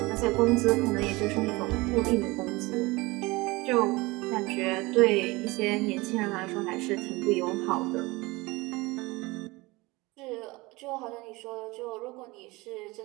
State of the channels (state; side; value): quieter; left; 22.6 dB